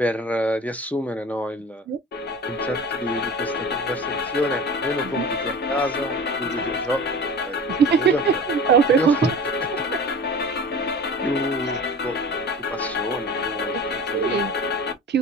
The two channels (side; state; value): both; normal; correlation 0.37